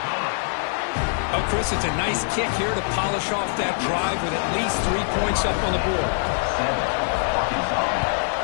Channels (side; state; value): right; silent; 63 dB below the other